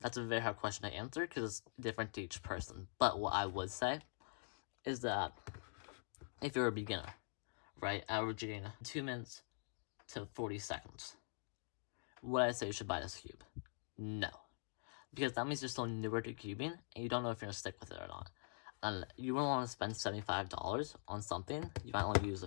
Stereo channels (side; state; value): right; silent; digital silence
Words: a very hard question to answer because it's different to each person. But what I would say is that if you're a beginner, right, averaging 2 minutes to 40 seconds, would I say you should buy this cube? No. Because that means you're still newer to cubing and you don't know if you're going to stick with it or not. And you wouldn't want to spend $75 on something you might only use